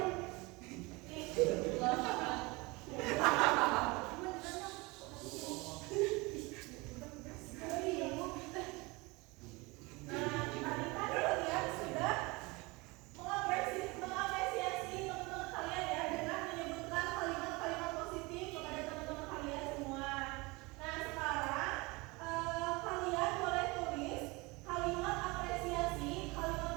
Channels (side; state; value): left; quieter; 24.8 dB